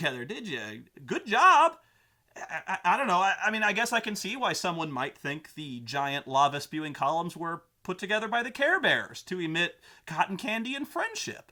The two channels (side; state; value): both; identical; correlation 1.00